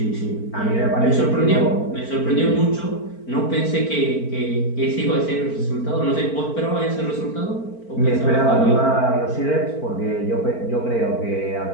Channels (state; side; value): late; right; 4.4 ms